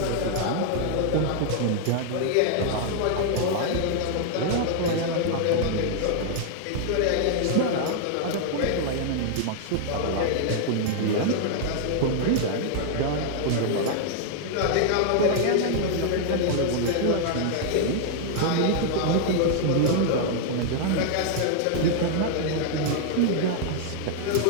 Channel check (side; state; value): both; different; correlation 0.00